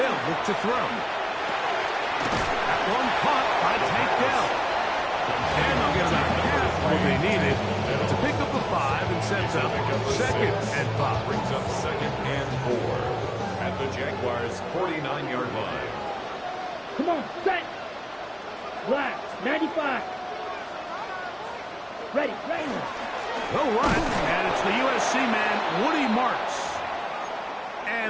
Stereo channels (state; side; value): identical; both; correlation 1.00